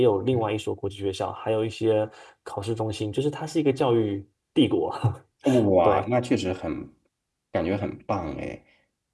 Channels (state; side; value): identical; both; correlation 1.00